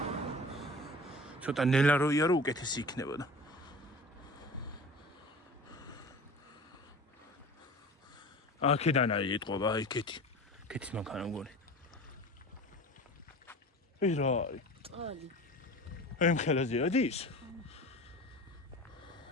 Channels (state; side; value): normal; both; correlation 0.38